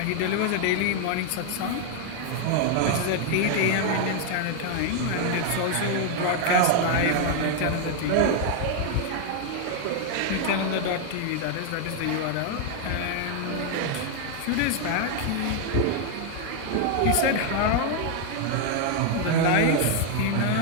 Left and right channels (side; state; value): both; different; correlation 0.00